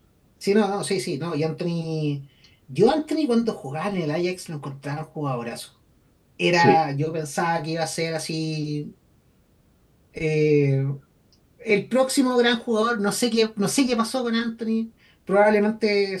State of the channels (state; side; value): identical; both; correlation 1.00